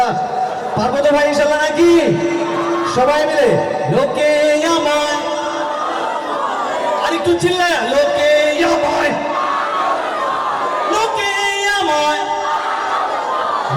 পারবো তো ভাই ইনশাল্লাহ নাকি? সবাই মিলে লোকে আমায়, আর একটু চিল্লায় লোকে আমায়, লোকে আমায়,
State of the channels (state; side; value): identical; both; correlation 1.00